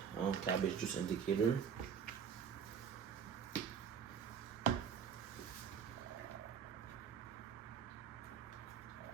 cabbage juice indicator.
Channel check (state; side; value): quieter; left; 7.3 dB